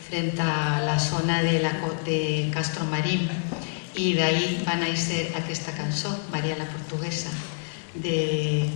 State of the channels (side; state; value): right; silent; digital silence